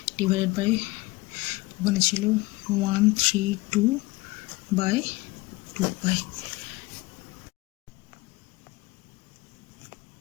ডিভাইডেড বাই ওখানে ছিল 132 বাই 2 পাই।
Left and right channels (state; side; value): quieter; right; 21.9 dB